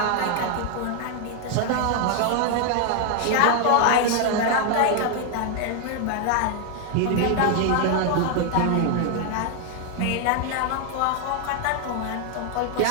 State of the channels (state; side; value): different; both; correlation 0.01